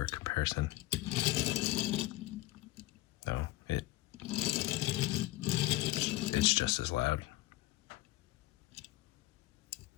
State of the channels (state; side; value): quieter; right; 18.2 dB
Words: comparison. No, it's just as loud.